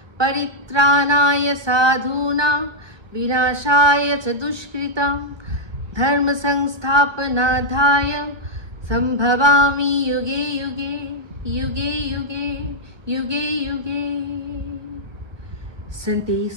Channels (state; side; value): late; left; 1.2 ms